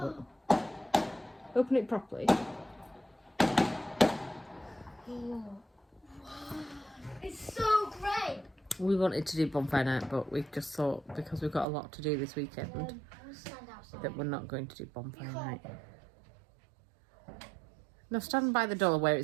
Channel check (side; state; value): left; drops out; at 11.7 s